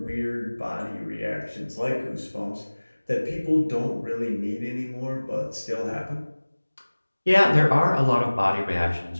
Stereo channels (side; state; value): both; inverted; correlation -1.00